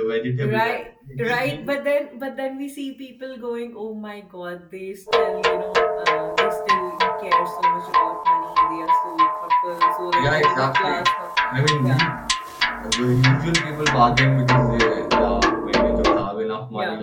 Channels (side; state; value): both; identical; correlation 1.00